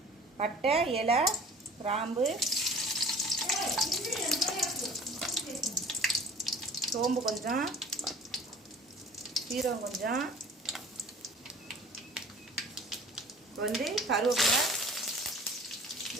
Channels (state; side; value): normal; both; correlation 0.46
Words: பட்டை, இலை, கிராம்பு, சோம்பு கொஞ்சம், சீரகம் கொஞ்சம், கருவேப்பிலை,